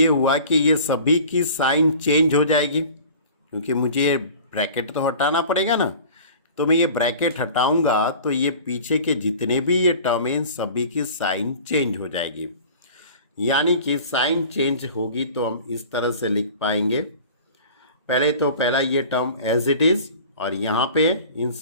हुआ कि ये सभी की साइन चेंज हो जाएगी, क्योंकि मुझे ये ब्रैकेट तो हटाना पड़ेगा ना, तो मैं ये ब्रैकेट हटाऊंगा तो ये पीछे के जितने भी ये टर्म हैं सभी की साइन चेंज हो जाएगी। यानी कि साइन चेंज होगी तो हम इस तरह से लिख पाएंगे, पहले तो पहला ये टर्म एज इट इज, और यहाँ पे इन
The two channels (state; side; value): inverted; both; correlation -0.43